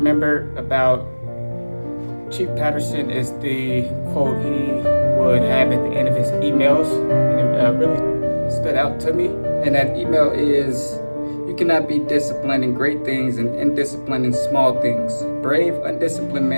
remember about Chief Patterson is the quote he would have at the end of his emails, and it really stood out to me. And that email is, "You cannot be disciplined in great things and indisciplined in small things. Brave, undisciplined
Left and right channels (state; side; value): inverted; both; correlation -1.00